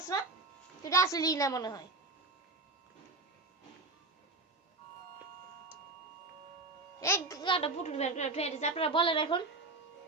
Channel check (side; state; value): left; quieter; 3.2 dB